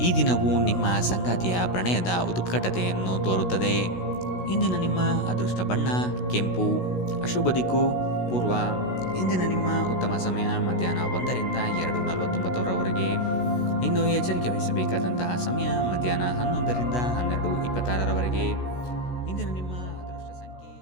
ಈ ದಿನವು ನಿಮ್ಮ ಸಂಗಾತಿಯ ಪ್ರಣಯದ ಉತ್ಕಟತೆಯನ್ನು ತೋರುತ್ತದೆ. ಇಂದಿನ ನಿಮ್ಮ ಅದೃಷ್ಟ ಬಣ್ಣ ಕೆಂಪು. ಅಶುಭ ದಿಕ್ಕು ಪೂರ್ವ. ಇಂದಿನ ನಿಮ್ಮ ಉತ್ತಮ ಸಮಯ ಮಧ್ಯಾಹ್ನ 1ರಿಂದ 2:49ರವರೆಗೆ. ಇನ್ನು ಎಚ್ಚರಿಕೆ ವಹಿಸಬೇಕಾದಂತಹ ಸಮಯ ಮಧ್ಯಾಹ್ನ 11ರಿಂದ 12:26ರವರೆಗೆ.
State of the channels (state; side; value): late; right; 16 ms